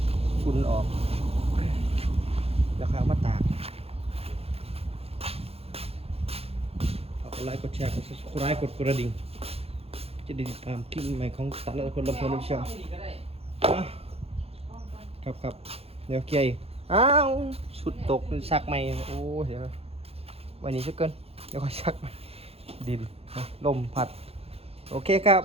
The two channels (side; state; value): left; late; 0.29 ms